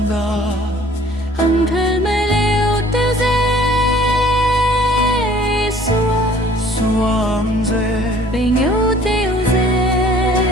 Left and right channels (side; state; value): both; normal; correlation 0.54